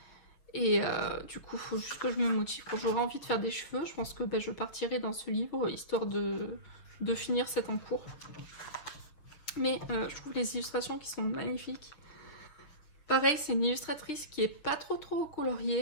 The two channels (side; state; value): right; late; 6.9 ms